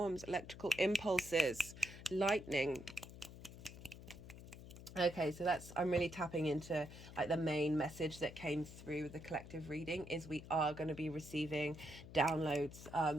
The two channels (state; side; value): noise; left; hum, 14 dB below the sound